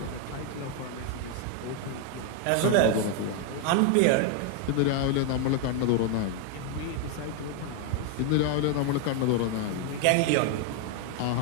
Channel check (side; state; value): both; different; correlation 0.01